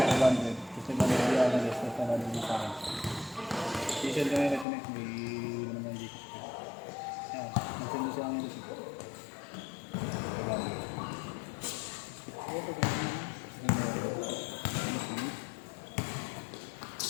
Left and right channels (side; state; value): right; drops out; at 4.7 s